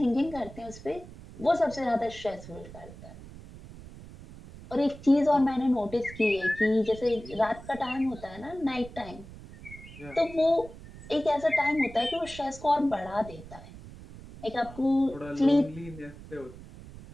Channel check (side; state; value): right; noise; rumble, 16 dB below the sound